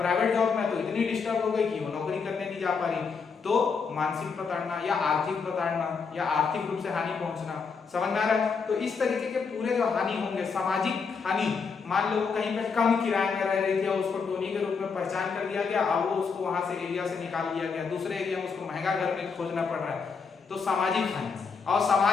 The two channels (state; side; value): quieter; right; 5.4 dB